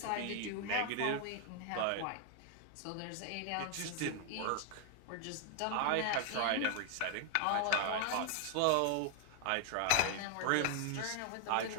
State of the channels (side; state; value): both; different; correlation 0.00